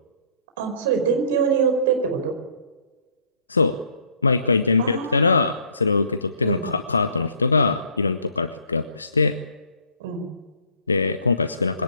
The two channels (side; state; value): both; inverted; correlation -0.60